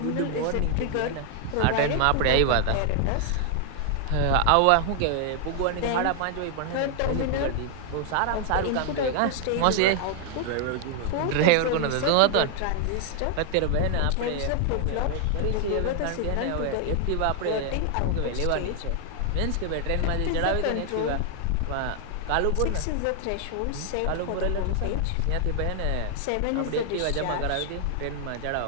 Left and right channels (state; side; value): different; both; correlation 0.00